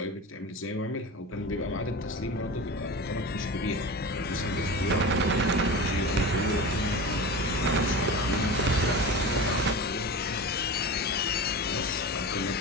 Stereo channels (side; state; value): both; normal; correlation 0.29